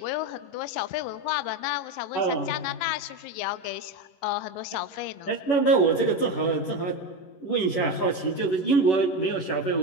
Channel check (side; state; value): right; late; 11 ms